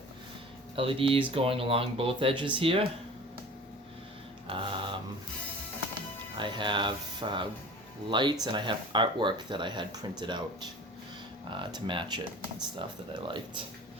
LEDs going along both edges here. I have lights and I have artwork that I had printed out to match it and stuff that I liked.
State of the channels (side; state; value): both; normal; correlation 0.41